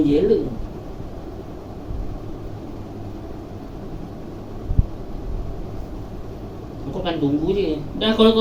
jela. Kau kan tunggu je. Dah kalau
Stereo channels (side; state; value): both; identical; correlation 1.00